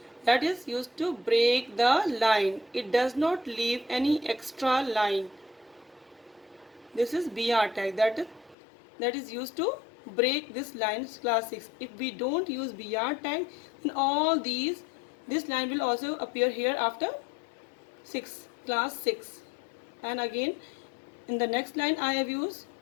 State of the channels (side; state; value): right; drops out; at 8.6 s